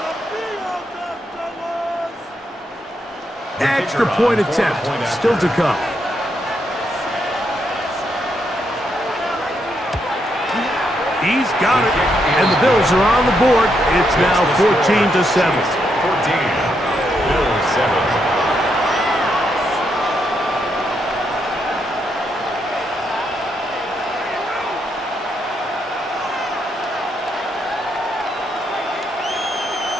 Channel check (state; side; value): normal; both; correlation 0.79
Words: Extra point attempt still to come. He's got it, and the Bills are on the board. It's now 14-7. 14. Bills 7.